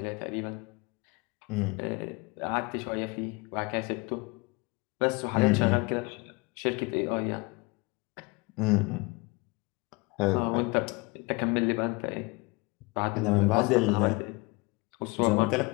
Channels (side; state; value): right; quieter; 26.8 dB